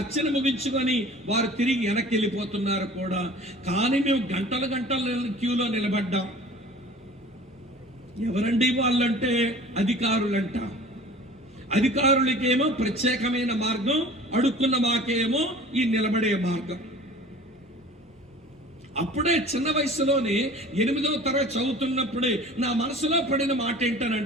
ముగించుకొని వారు తిరిగి వెనక్కి వెళ్ళిపోతున్నారు కూడా. కానీ మేము గంటల క్యూలో నిలబడ్డాం. ఎవరండి వాళ్ళంటే అధికారులంట. అధికారులకేమో ప్రత్యేకమైన మార్గం, అడుక్కున్న మాకేమో ఈ నిలబడే మార్గం. అప్పుడే చిన్న వయసులోనే 8వ తరగతి చదువుతున్నప్పుడే నా మనసులో పడిన మాట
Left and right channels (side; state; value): both; normal; correlation 0.44